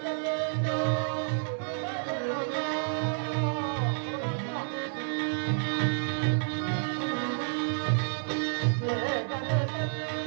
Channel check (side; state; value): left; silent; 58 dB below the other